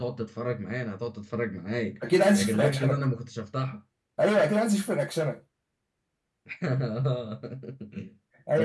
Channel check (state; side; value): identical; both; correlation 1.00